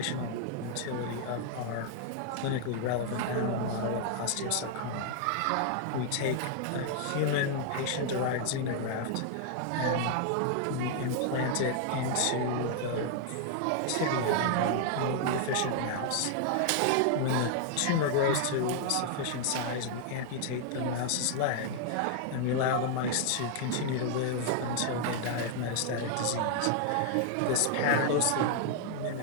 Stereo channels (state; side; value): different; both; correlation 0.00